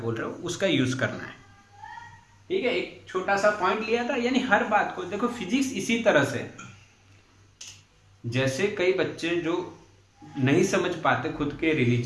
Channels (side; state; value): both; identical; correlation 1.00